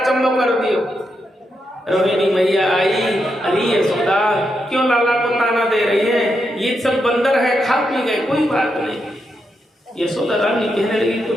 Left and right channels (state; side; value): normal; both; correlation 0.83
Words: चंबो कर दियो। रोहिणी मैया आई, अरे यशोदा क्यों लाला को ताना दे रही है? ये सब बंदर है, खा पी गए, कोई बात नहीं। यशोदा रानी कहने लगी,